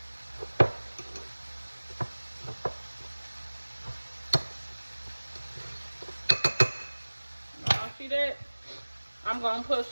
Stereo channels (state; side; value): inverted; both; correlation -1.00